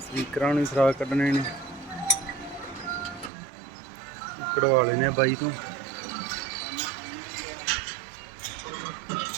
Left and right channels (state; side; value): drops out; left; at 3.3 s